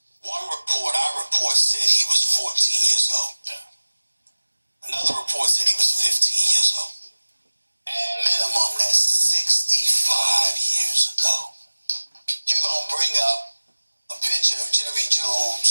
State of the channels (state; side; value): inverted; both; correlation -1.00